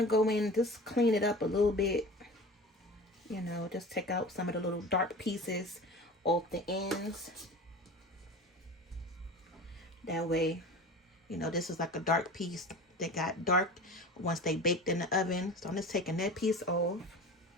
go in and just clean it up a little bit. You know, just take out some of the little dark pieces off the ends. That way, you know, this is like a dark piece that got dark once they baked in the oven. So I'm just taking that piece off.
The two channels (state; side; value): normal; both; correlation 0.36